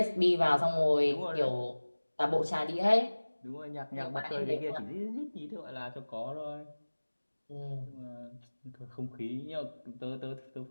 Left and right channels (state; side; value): inverted; both; correlation -1.00